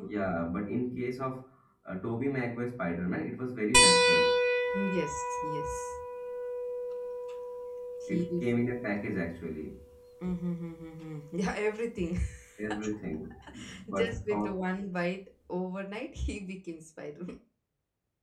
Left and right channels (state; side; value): identical; both; correlation 1.00